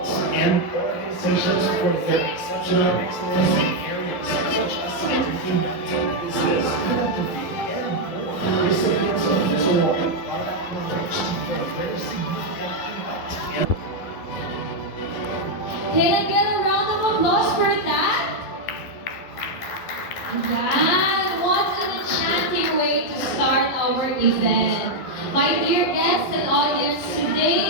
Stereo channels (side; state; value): right; late; 11 ms